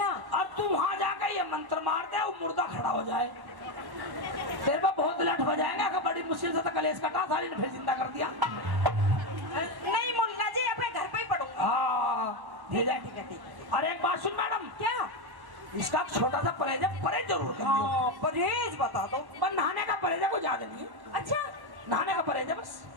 अब तू वहां जाकर ये मंत्र मार दे, वो मुर्दा खड़ा हो जाए, तेरे पे बहुत लठ हो जाएगा कि बड़ी मुश्किल से तो कलेश कटा, साली ने फिर जिंदा कर दिया। नहीं मुल्ला जी, अपने घर पे ही पढ़ूंगा। हाँ ठीक है ठीक है ठीक है। और एक बात सुन मैडम, क्या? इसका छोटा सा परहेज है, परहेज जरूर कर लियो। हाँ, परहेज बता दो। पर नहाने का परहेज है, कोई ज्यादा नहीं है। अच्छा, नहाने का परहेज है बस।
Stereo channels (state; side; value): late; left; 1.1 ms